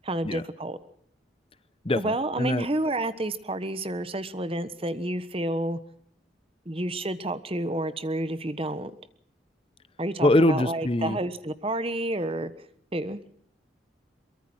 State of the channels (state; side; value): normal; both; correlation 0.61